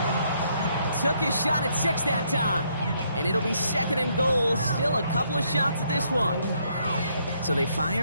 Took his shot at 6 that time. And it'll be 2nd and goal. Still a couple of shots at this one. So they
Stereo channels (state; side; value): inverted; both; correlation -0.72